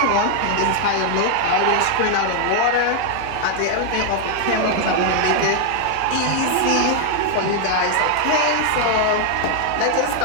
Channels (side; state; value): both; different; correlation 0.00